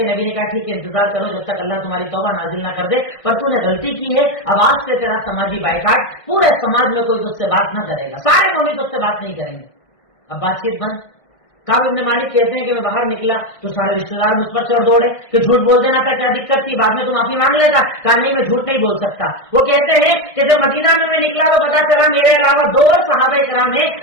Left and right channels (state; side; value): late; right; 1.6 ms